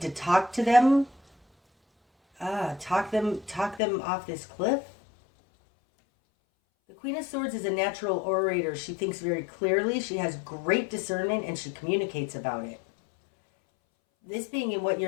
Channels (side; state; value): right; drops out; at 3.8 s